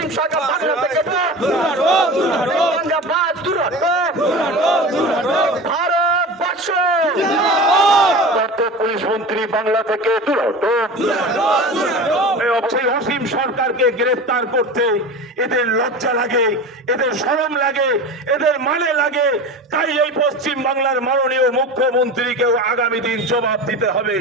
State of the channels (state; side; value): normal; both; correlation 0.31